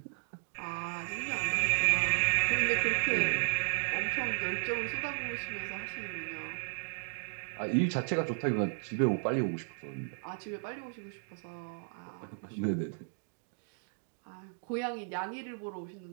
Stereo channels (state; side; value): silent; left; digital silence